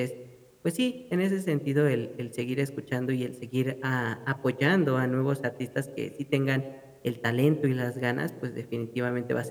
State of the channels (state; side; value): identical; both; correlation 1.00